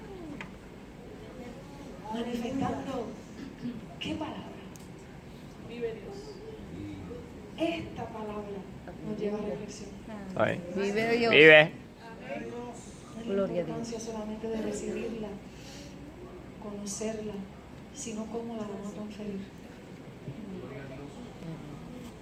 Manifestando. ¿Qué palabra? Vive Dios. Esta palabra nos lleva a reflexión. Ay. Vive Dios. Vive. No es la Gloria a importancia solamente de recibirla, conocerla, sino cómo la vamos a transferir.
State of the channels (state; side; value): identical; both; correlation 1.00